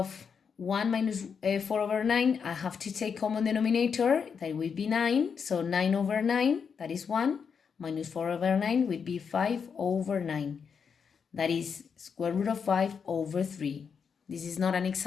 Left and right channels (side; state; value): right; quieter; 6.4 dB